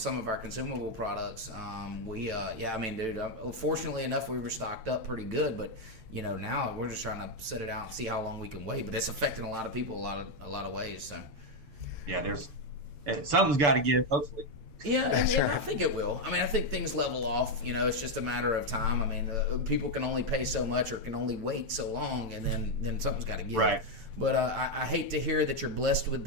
of our consumable products. Fortunately enough, we were stocked up pretty good, but now we're just trying to set it out and see how long we can wait. But it's affecting a lot of people a lot of ways. So. Yeah, something's got to give. Hopefully. Yeah, I think it will. I mean, I think things level off. It's just a matter of time. I mean, people can only pay so much or can only wait so long, and then something's got to give. Right. But I hate to hear that you're blessed with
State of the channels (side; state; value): left; late; 6.9 ms